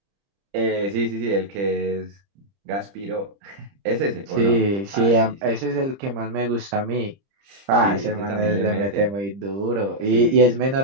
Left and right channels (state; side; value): late; left; 30 ms